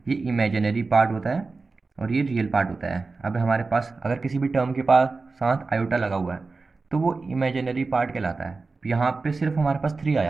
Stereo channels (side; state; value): left; quieter; 4.0 dB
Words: ये इमेजिनरी पार्ट होता है और ये रियल पार्ट होता है। अब हमारे पास अगर किसी भी टर्म के पास साथ आयोटा लगा हुआ है तो वो इमेजिनरी पार्ट कहलाता है। यहाँ पे सिर्फ हमारे पास 3